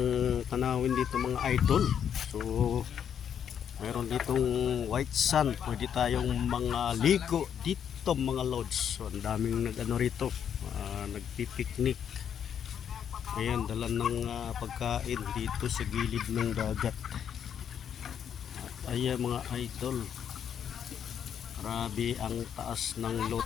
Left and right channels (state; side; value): quieter; right; 8.5 dB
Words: tanawin dito mga idol. So mayroon ditong white sand, pwede tayong mga ligo dito mga lods. So ang daming nag-ano rito, nagpipiknik. Ayan, dala ng pagkain dito sa gilid ng dagat. At ayan mga idol, grabe ang taas ng low